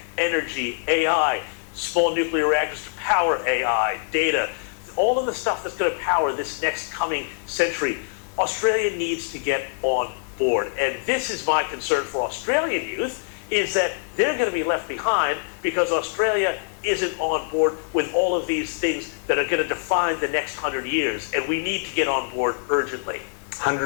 energy, AI, small nuclear reactors to power AI, data, all of the stuff that's going to power this next coming century. Australia needs to get on board. And this is my concern for Australian youth, is that they're going to be left behind because Australia isn't on board with all of these things that are going to define the next 100 years. And we need to get on board urgently.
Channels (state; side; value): silent; right; 58 dB below the other